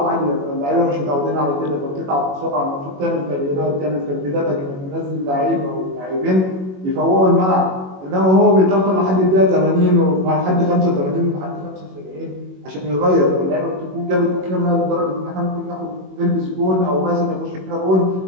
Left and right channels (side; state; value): left; late; 21 ms